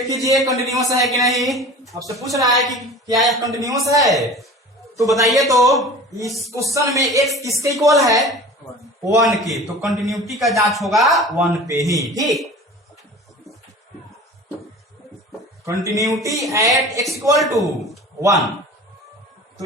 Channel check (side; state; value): both; normal; correlation 0.39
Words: कीजिए कंटिन्यूअस है कि नहीं। आपसे पूछ रहा है कि क्या यह कंटिन्यूअस है, तो बताइए तो इस क्वेश्चन में x किसके इक्वल है, 1 के, तो कंटिन्यूटी का जांच होगा 1 पे ही। ठीक, continuity at x equal to 1,